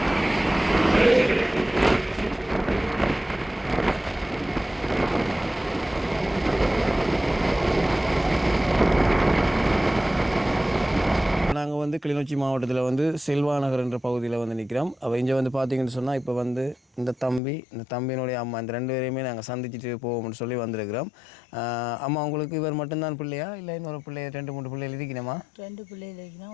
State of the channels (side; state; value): right; drops out; at 17.4 s